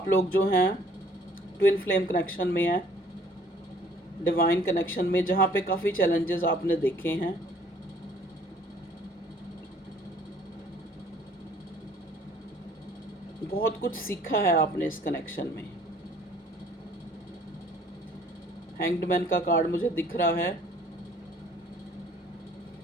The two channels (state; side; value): normal; both; correlation 0.57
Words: लोग जो हैं ट्विन फ्लेम कनेक्शन में हैं, डिवाइन कनेक्शन में, जहाँ पे काफ़ी चैलेंजेस आपने देखे हैं। बहुत कुछ सीखा है आपने इस कनेक्शन में। हैंग्ड मैन का कार्ड मुझे दिख रहा है।